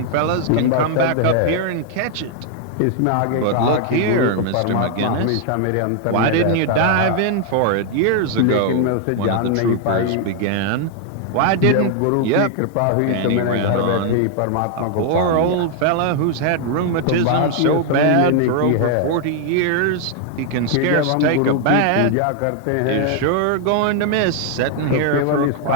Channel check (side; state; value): both; different; correlation 0.00